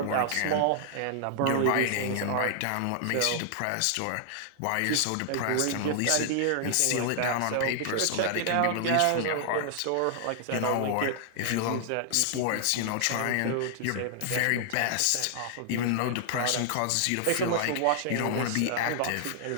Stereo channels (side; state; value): both; different; correlation -0.01